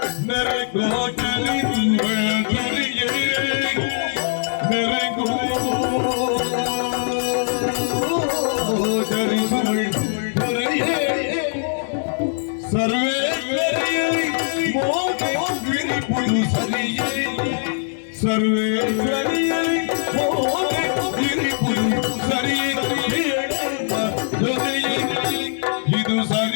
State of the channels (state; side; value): silent; right; 65 dB below the other